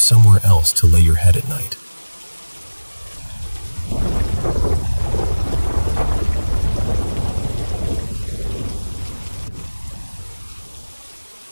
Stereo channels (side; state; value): both; inverted; correlation -1.00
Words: somewhere else to lay your head at night.